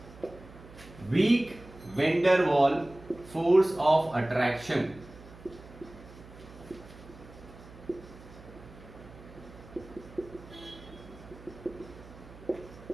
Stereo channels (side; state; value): right; noise; hum, 19 dB below the sound